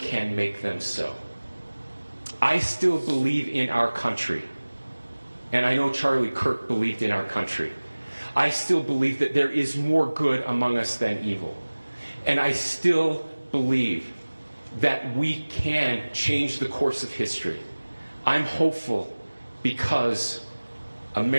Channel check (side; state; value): both; inverted; correlation -1.00